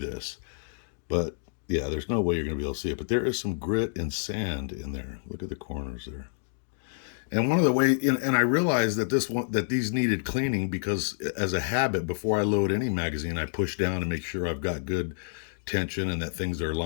but yeah, there's no way you're going to be able to see it. But there is some grit and sand in there. Look at the corners there. And one of the ways, and I realized that these needed cleaning because, as a habit, before I load any magazine, I push down to make sure I've got good tension and that things are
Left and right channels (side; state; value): right; silent; digital silence